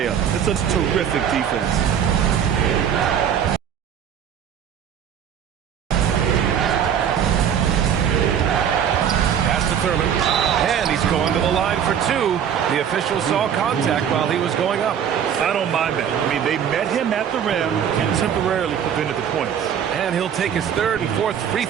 It's a terrific defense. Pass to Thurman. And he's going to the line for 2. The official saw contact while he was going up. I don't mind that. I mean, they met him at the rim and temporarily prevented the points. And he'll take his 3rd and 4th free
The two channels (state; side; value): quieter; left; 8.6 dB